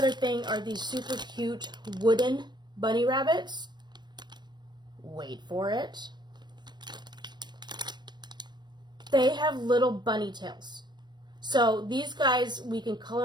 thing are these super cute wooden bunny rabbits. Wait for it. They have little bunny tails. So these guys, we can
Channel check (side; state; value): left; late; 0.21 ms